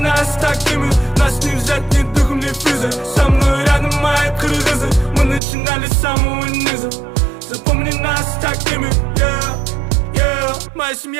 такими, нас не взять ни духом, ни физой. Со мной рядом мои кыргызы, мы начинали с самого низа. Запомни нас такими, yeah. Моя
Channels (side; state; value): left; drops out; at 5.4 s